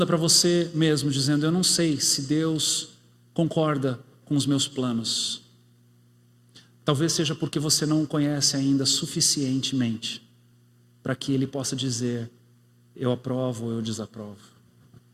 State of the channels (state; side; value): identical; both; correlation 1.00